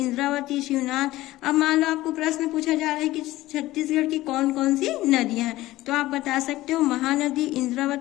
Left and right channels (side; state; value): right; quieter; 16.9 dB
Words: शिवनाथ। अब मान लो आपको प्रश्न पूछा जा रहा है कि छत्तीसगढ़ की कौन कौन सी नदियां हैं, तो आप बता सकते हो महानदी,